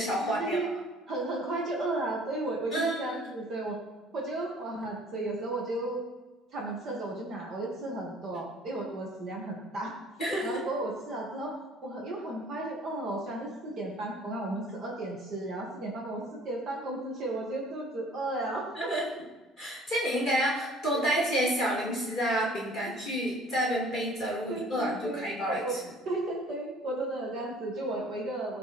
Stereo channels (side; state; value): both; normal; correlation 0.52